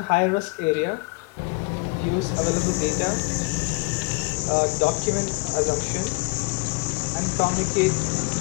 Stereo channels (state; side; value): quieter; right; 29.8 dB